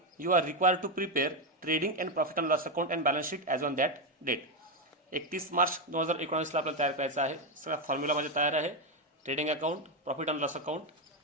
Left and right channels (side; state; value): both; normal; correlation 0.06